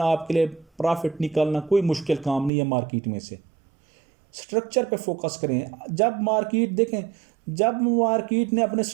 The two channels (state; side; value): drops out; left; at 2.5 s